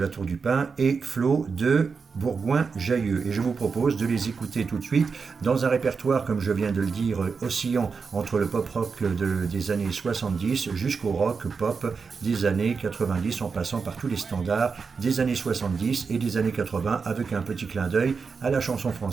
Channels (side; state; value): left; quieter; 5.2 dB